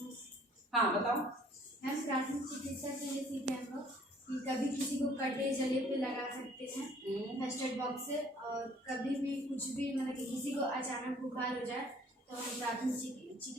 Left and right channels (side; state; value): both; normal; correlation 0.57